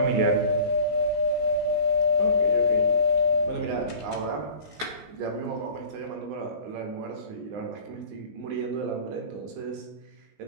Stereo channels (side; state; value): left; late; 19 ms